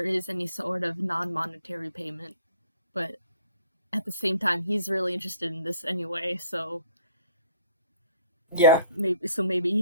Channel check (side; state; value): both; inverted; correlation -0.56